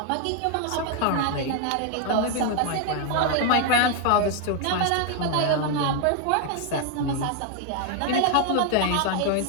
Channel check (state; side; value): different; both; correlation 0.00